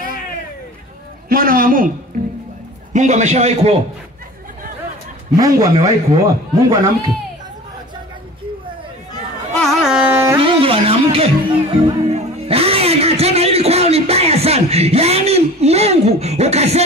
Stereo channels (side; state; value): both; normal; correlation 0.40